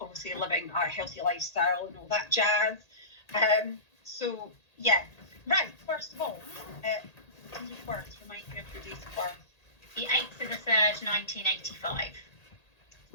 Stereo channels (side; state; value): right; late; 1.8 ms